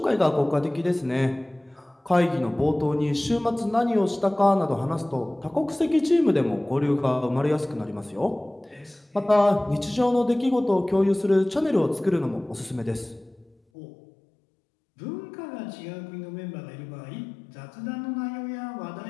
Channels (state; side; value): drops out; right; at 13.6 s